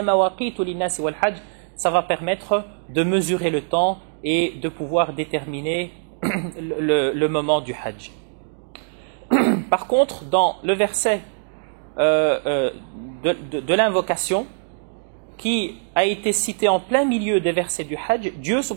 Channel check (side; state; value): left; silent; digital silence